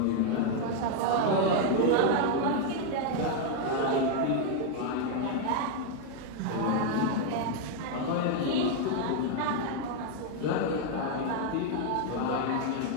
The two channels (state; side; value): different; both; correlation 0.00